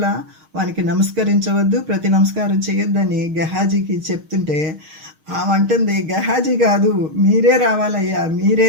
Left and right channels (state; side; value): late; left; 6.4 ms